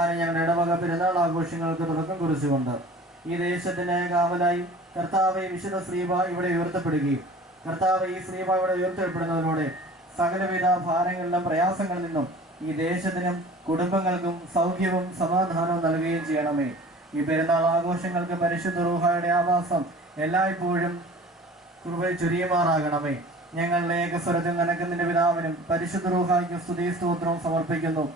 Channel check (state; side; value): normal; both; correlation 0.44